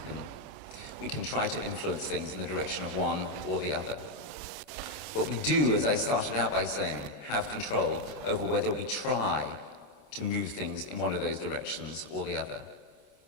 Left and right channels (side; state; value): right; late; 27 ms